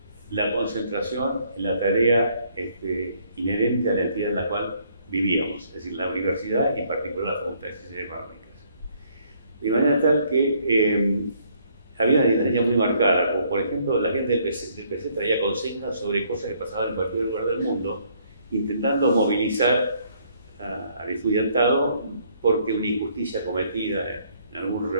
la concentración en la tarea inherente a la entidad en la cual vivíamos, es decir, la universidad y en particular la Facultad de Ciencias Económicas. De manera tal que había una diferencia muy marcada, como por ejemplo la gente del PC traía consignas sobre cosas que pasaban en cualquier lugar del mundo, intentando movilizar al estudiantado porque una injusticia cometida en algún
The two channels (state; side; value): inverted; both; correlation -0.66